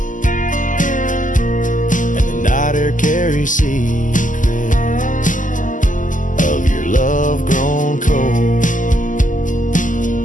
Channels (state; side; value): late; right; 0.38 ms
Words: and the night air carries secrets of your love grown cold.